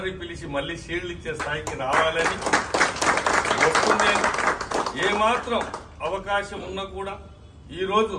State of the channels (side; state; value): both; identical; correlation 1.00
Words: పిలిచి మళ్ళీ షీల్డ్ ఇచ్చే స్థాయికి రావాలని వస్తుంది. ఏమాత్రం అవకాశం ఉన్నా కూడా ఈరోజు